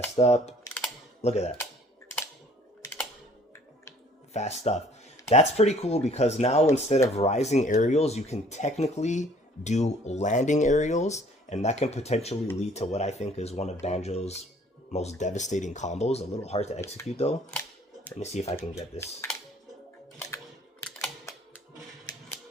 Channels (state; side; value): normal; both; correlation 0.56